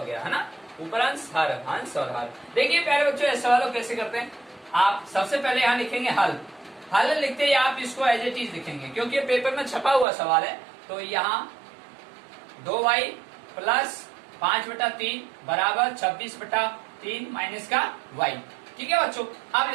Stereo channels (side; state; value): left; drops out; at 10.1 s